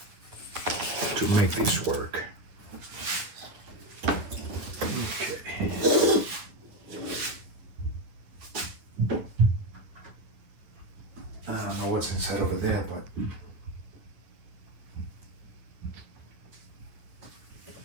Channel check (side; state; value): left; late; 9.5 ms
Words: to make this work. Okay. I don't know what's inside over there, but